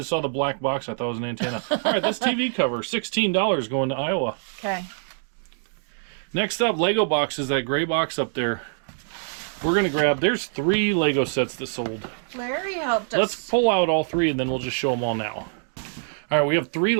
saw the black box. I thought it was an antenna. All right, this TV cover, $16 going to Iowa. Okay. Next up, Lego boxes. That gray box up there. We're gonna grab. There's 3 Lego sets that sold. Larry helped us. Let's pull out all 3, and then we'll just show them all now. All right, we have 3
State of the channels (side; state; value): left; silent; 62 dB below the other